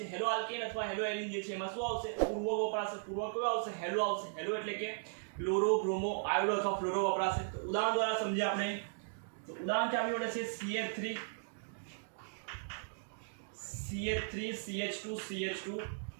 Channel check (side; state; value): left; silent; digital silence